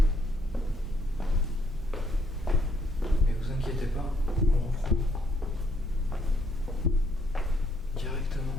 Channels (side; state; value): both; normal; correlation 0.69